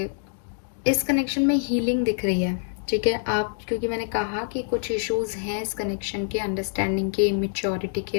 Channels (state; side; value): silent; right; digital silence